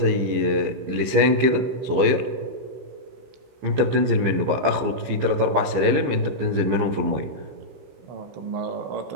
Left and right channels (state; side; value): late; left; 15 ms